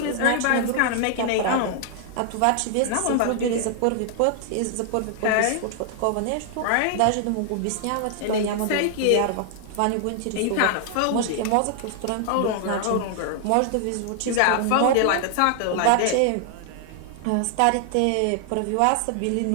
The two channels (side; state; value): both; different; correlation 0.00